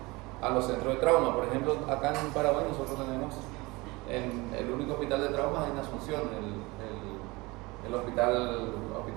a los centros de trauma. Por ejemplo, acá en Paraguay nosotros tenemos el único hospital de trauma en Asunción, el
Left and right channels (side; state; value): left; quieter; 23.4 dB